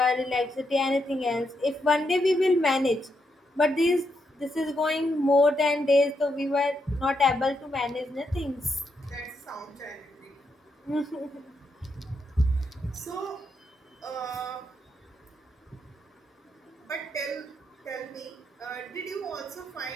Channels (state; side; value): normal; both; correlation 0.81